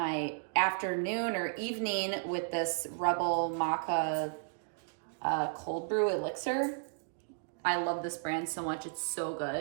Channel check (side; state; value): left; silent; digital silence